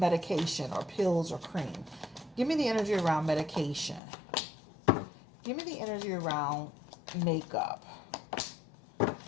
or pills or cream? Give me the energy around medication. Give me the energy around makeup.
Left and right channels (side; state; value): right; drops out; at 4.0 s